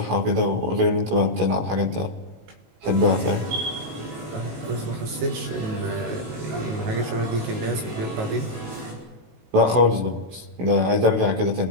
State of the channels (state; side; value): late; left; 18 ms